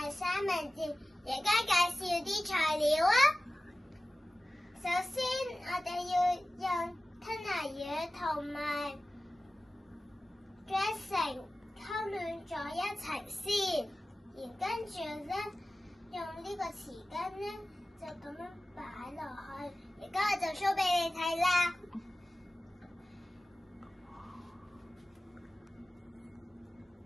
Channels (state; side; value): normal; both; correlation 0.96